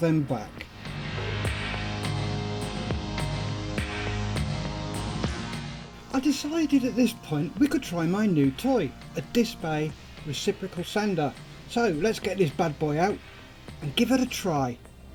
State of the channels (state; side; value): identical; both; correlation 1.00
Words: back. I decided at this point we could try my new toy, a disc bay reciprocal sander. So let's get this bad boy out and give it a try.